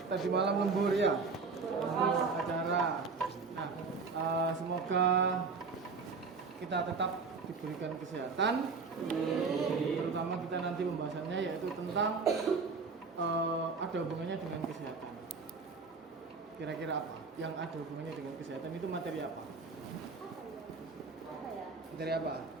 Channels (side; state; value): left; quieter; 4.6 dB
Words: tadi malam lembur ya? OSIS acara. Nah, semoga kita tetap diberikan kesehatan. Terutama kita nanti pembahasannya yaitu tentang ada hubungannya dengan kesehatan. Kira-kira apa? Yang ada hubungannya dengan kesehatan itu materi apa? Materi apa?